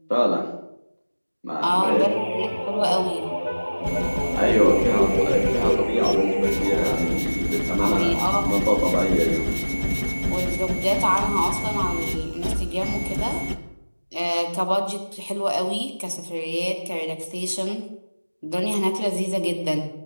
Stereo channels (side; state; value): both; inverted; correlation -1.00